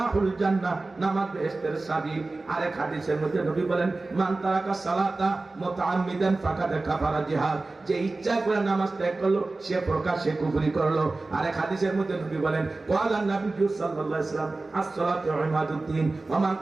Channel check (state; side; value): quieter; left; 3.3 dB